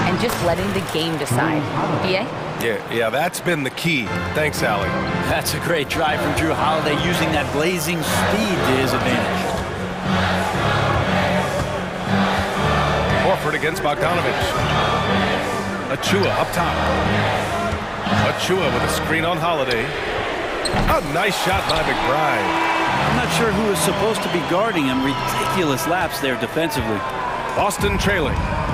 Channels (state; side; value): identical; both; correlation 1.00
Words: and just letting the game decide. BA? Yeah, that's been the key. Thanks, Allie. That's a great drive from Drew Holiday, using that blazing speed to his advantage. Horford against Bogdanovich. Achua up top. Achua with a screen on Holiday. A nice shot by McBride. I'm not sure who is supposed to be guarding him. Ridiculous lapse there defensively. Boston trailing.